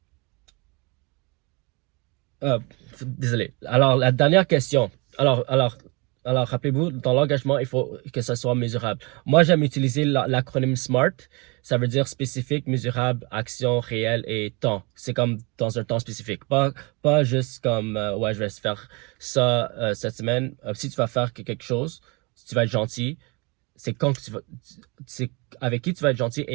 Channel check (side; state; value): left; quieter; 28.7 dB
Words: désolé. Alors, la dernière question. Alors, rappelez-vous, dans l'engagement, il faut que ça soit mesurable. Moi, j'aime utiliser l'acronyme SMART. Ça veut dire spécifique, mesurable, action, réelle et temps. C'est comme dans un temps spécifique. Pas juste comme, ouais, je vais faire ça cette semaine. Si tu vas faire quelque chose, si tu vas être gentil, c'est quand que tu vas, c'est avec qui tu vas être gentil